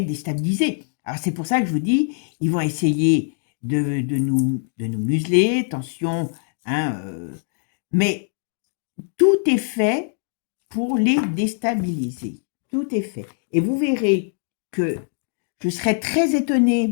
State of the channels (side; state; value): right; silent; 64 dB below the other